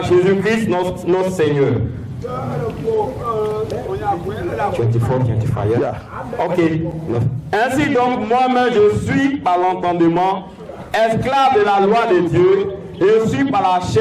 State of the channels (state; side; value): identical; both; correlation 1.00